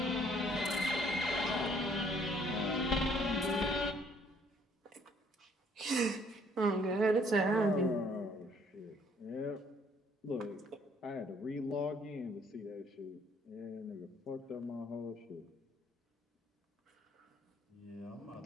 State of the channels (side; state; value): both; normal; correlation 0.63